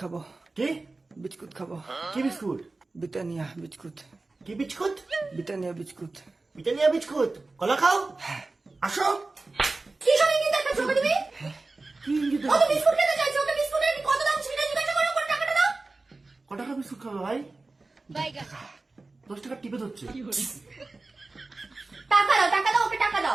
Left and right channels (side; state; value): left; quieter; 3.4 dB